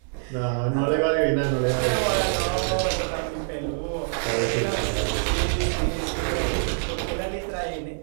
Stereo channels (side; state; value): left; silent; 62 dB below the other